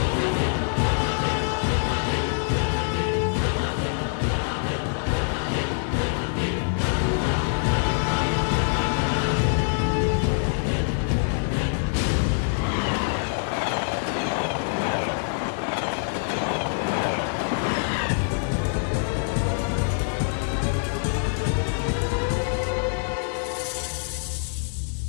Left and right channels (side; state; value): right; silent; digital silence